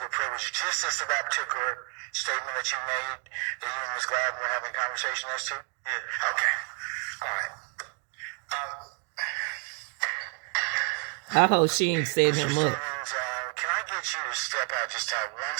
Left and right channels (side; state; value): left; quieter; 39.4 dB